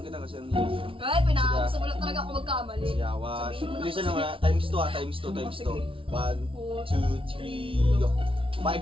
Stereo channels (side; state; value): left; late; 0.25 ms